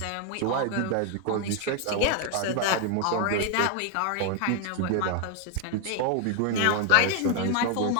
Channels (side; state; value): both; different; correlation 0.01